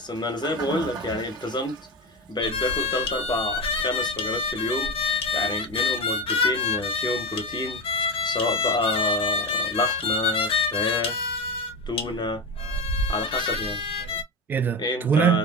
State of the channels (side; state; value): both; normal; correlation 0.20